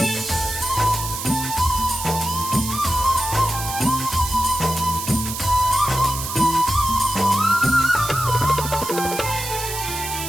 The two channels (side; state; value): right; noise; hiss, 6 dB below the sound